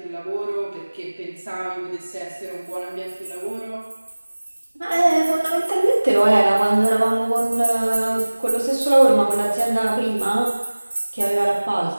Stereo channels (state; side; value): inverted; both; correlation -1.00